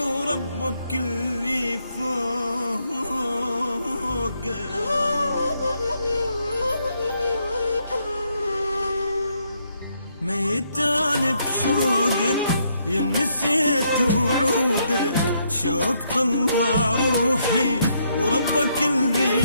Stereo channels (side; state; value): both; inverted; correlation -0.74